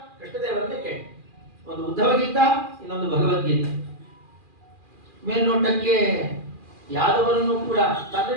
ಕೃಷ್ಣದೇವರನ್ನೇ ಕೇಳಿ. ಒಂದು ಉದ್ಧವ ಗೀತಾ, ಇನ್ನೊಂದು ಭಗವದ್ಗೀತಾ. ಮೇಲ್ನೋಟಕ್ಕೆ ಯಾದವರನ್ನು ಕೂಡ ತನ್ನ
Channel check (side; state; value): left; late; 2.4 ms